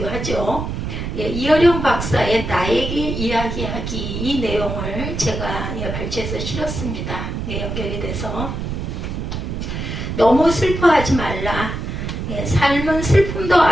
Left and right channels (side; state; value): right; noise; rumble, 4 dB below the sound